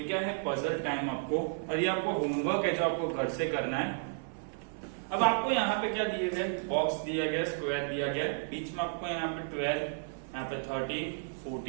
क्या है पजल टाइम आपको, और ये आपको होमवर्क है जो आपको घर से करना है। अब आपको यहाँ पे क्या दिए गए, बॉक्स दिया गया, स्क्वायर दिया गया, बीच में आपको यहाँ पे 12, यहाँ पे 13,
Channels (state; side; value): silent; left; 56 dB below the other